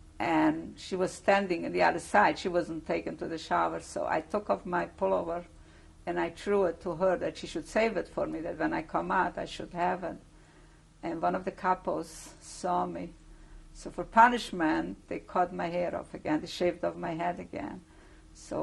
And she was standing on the other side. She wasn't taken to the shower. So I took off my pullover and I threw it to her that she should save it for me, that when I come out, I should have it. And one of the capos saw me. So for punishment, they cut my hair off again. They shaved off my head again.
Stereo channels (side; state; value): both; identical; correlation 1.00